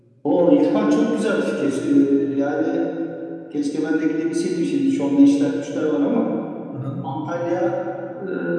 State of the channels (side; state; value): both; identical; correlation 1.00